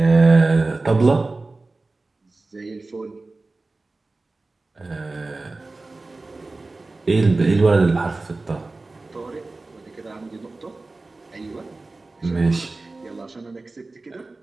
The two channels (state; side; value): quieter; left; 3.3 dB